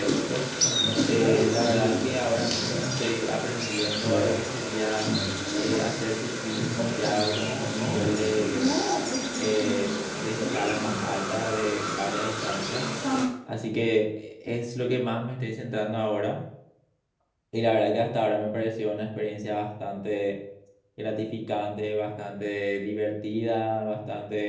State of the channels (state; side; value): identical; both; correlation 1.00